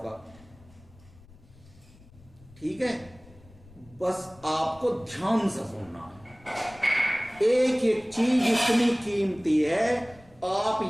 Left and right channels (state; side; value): noise; left; rumble, 25 dB below the sound